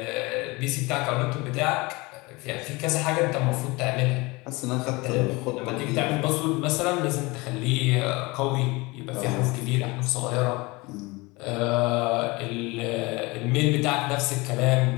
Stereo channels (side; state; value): right; quieter; 24.1 dB